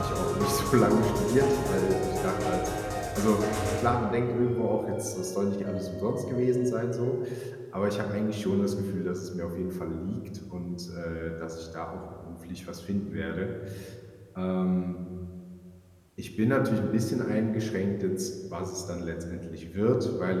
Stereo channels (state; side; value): identical; both; correlation 1.00